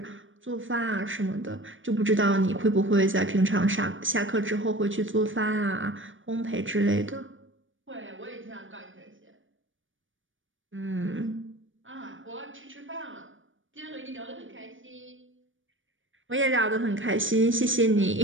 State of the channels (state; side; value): late; left; 0.57 ms